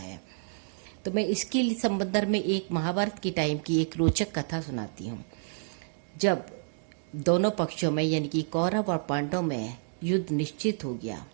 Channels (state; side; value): silent; left; digital silence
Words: तो मैं इसके संबंध में एक महाभारत के टाइम की एक रोचक कथा सुनाती हूँ। जब दोनों पक्षों में यानी कि कौरव और पांडव में युद्ध निश्चित हो गया,